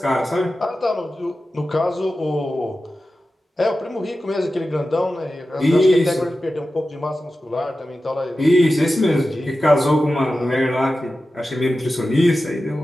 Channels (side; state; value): both; normal; correlation 0.93